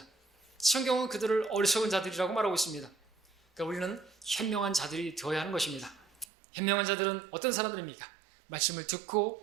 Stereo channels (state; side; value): drops out; left; at 6.2 s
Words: 성경은 그들을 어리석은 자들이라고 말하고 있습니다. 그러니까 우리는 현명한 자들이 되어야 하는 것입니다. 현명한 자들은 어떤 사람들입니까? 말씀을